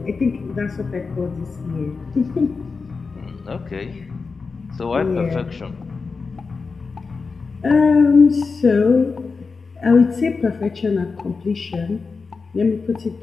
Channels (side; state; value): right; quieter; 4.6 dB